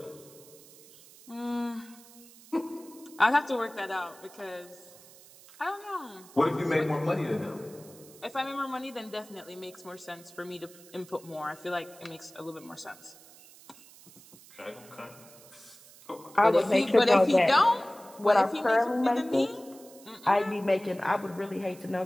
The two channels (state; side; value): noise; right; hiss, 22 dB below the sound